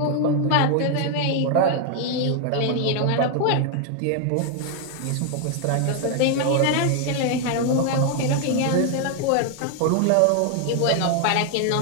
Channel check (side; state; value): both; different; correlation 0.00